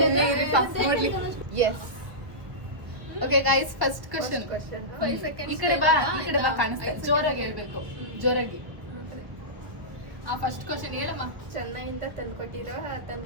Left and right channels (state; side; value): late; left; 1.1 ms